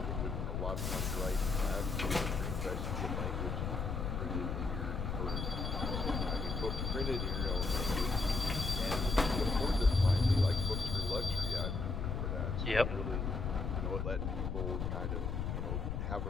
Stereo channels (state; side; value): noise; left; rumble, 1 dB below the sound